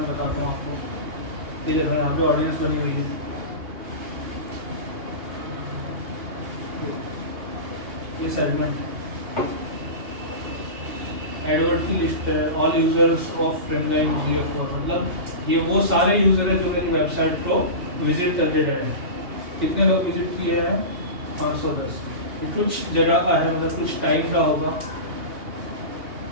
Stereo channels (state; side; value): late; left; 2.8 ms